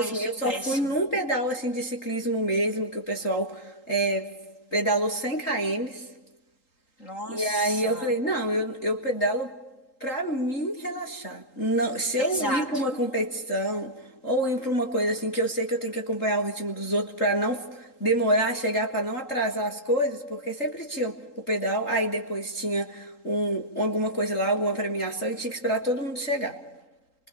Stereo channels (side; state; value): right; late; 3.8 ms